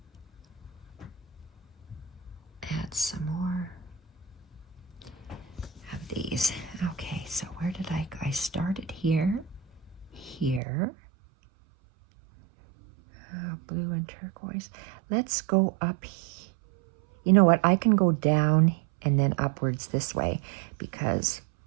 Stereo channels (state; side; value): drops out; left; at 10.6 s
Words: Add some more of these. Okay, so where did I go? I started here, here. Blue and turquoise. Let's go up. You know what? I can go down and then upwards this way because